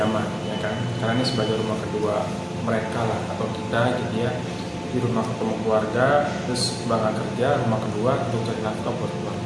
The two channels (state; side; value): identical; both; correlation 1.00